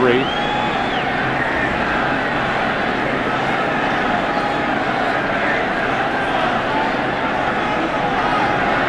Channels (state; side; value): identical; both; correlation 1.00